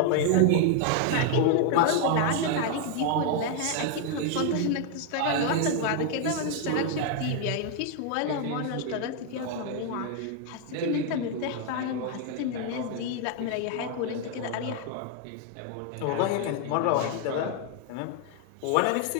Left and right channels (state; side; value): different; both; correlation 0.00